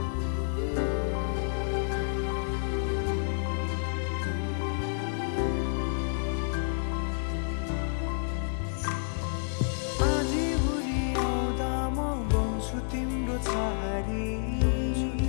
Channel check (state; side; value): silent; right; digital silence